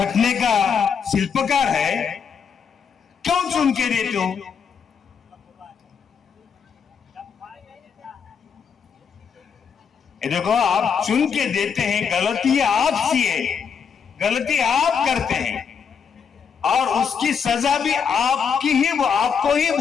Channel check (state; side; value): quieter; right; 6.6 dB